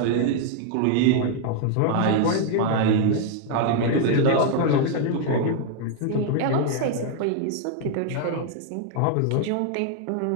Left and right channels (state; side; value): different; both; correlation 0.00